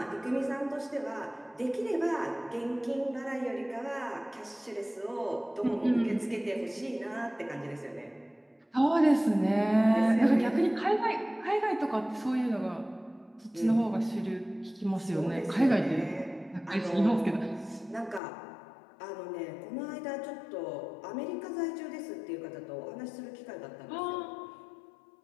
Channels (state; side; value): drops out; right; at 18.2 s